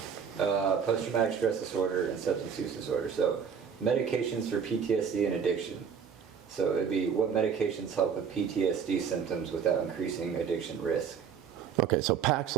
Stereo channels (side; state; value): left; quieter; 7.0 dB